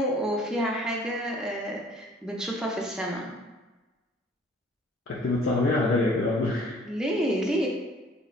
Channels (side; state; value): both; normal; correlation 0.55